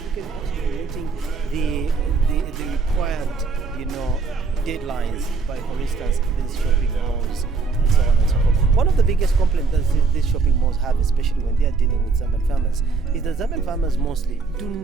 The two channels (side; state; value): left; quieter; 4.5 dB